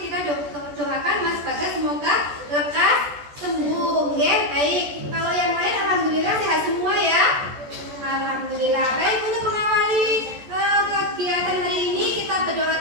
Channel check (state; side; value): late; left; 14 ms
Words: Kita doakan Mas Bagas semoga lekas sembuh ya. Baik, kalau yang lain alhamdulillah sehat semua ya. Alhamdulillah. Baik, untuk mengawali kegiatan hari ini kita berdoa